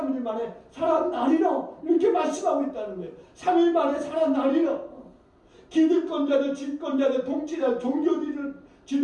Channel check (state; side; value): identical; both; correlation 1.00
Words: 만에 살아나리라 이렇게 말씀하고 있다는 거예요. 3일 만에 살아나리라. 기득권자들, 집권자들, 통치자들, 종교